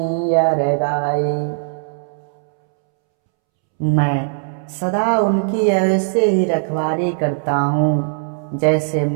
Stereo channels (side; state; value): left; silent; 67 dB below the other